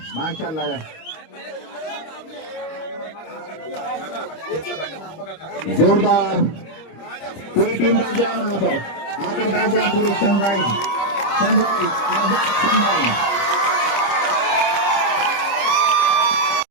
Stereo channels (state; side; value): late; right; 25 ms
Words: माशाल्लाह। जोरदार पूरी टीम बैठ जाए वहां पर, आकर बैठ जाए पूरी सनराइज आजाद सनराइज।